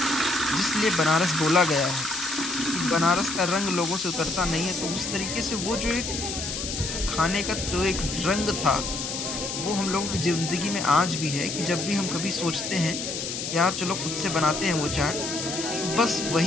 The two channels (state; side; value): noise; left; hiss, 5 dB below the sound